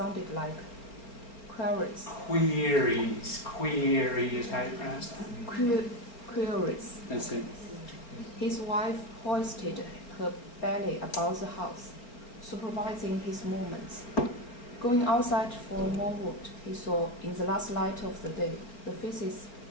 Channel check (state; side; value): late; right; 4.2 ms